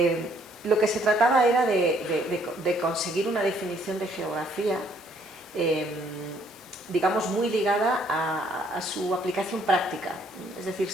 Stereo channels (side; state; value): both; normal; correlation 0.65